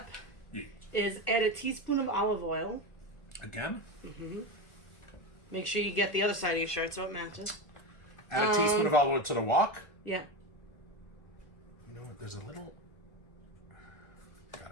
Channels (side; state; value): right; late; 1.4 ms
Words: Yeah. is add a teaspoon of olive oil. Again? Make sure you get the other side of your shirt so it matches. Add a teaspoon of olive oil to the wok. Yeah. You know what? There's a little. Got